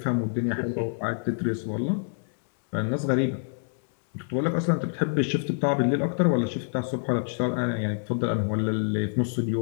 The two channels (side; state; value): right; silent; 60 dB below the other